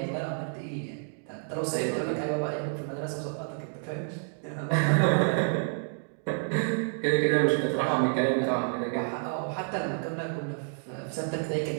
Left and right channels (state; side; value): silent; left; 58 dB below the other